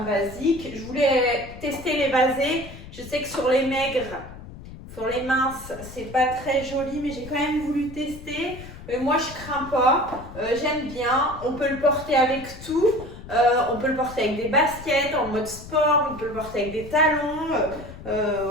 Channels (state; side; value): noise; left; rumble, 15 dB below the sound